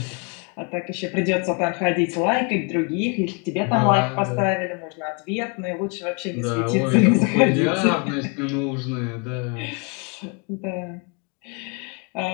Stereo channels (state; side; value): quieter; right; 34.0 dB